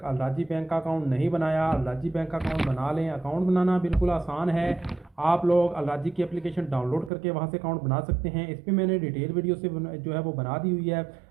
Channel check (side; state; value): left; drops out; at 7.1 s